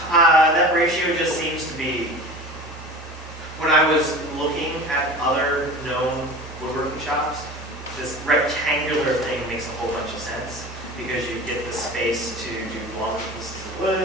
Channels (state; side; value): normal; both; correlation 0.36